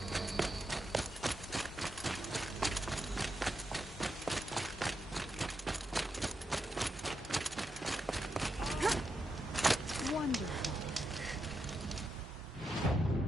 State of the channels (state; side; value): normal; both; correlation 0.85